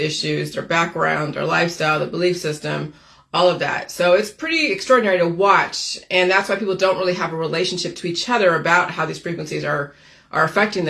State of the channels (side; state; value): both; identical; correlation 1.00